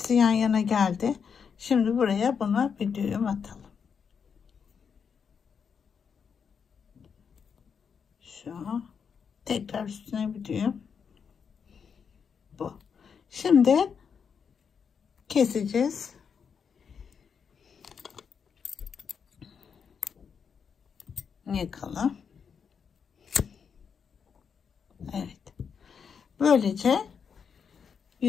yan yana geldi. Şimdi buraya buna bir düğüm atalım. Şu. Tekrar üstüne bir düğüm. Bu. Şimdi keseceğiz. Yakalım. Evet. Böylece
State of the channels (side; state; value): right; quieter; 6.6 dB